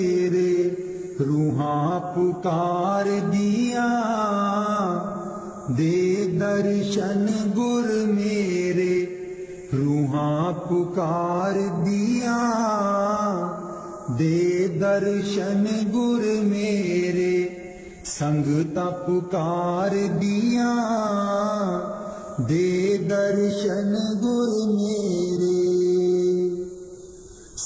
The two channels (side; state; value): both; identical; correlation 1.00